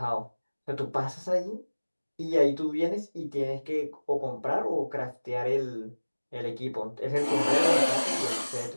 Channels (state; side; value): inverted; both; correlation -1.00